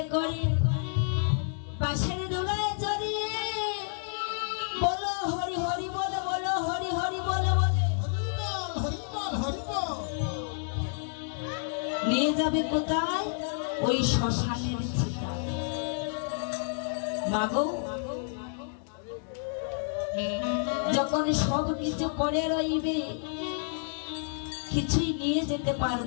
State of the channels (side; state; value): right; silent; digital silence